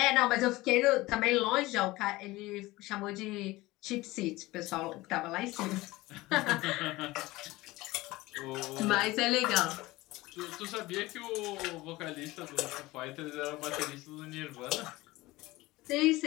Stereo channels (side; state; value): right; quieter; 19.6 dB